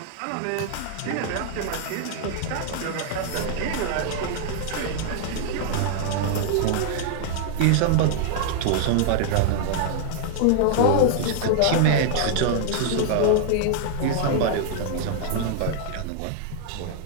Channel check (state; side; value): different; both; correlation -0.01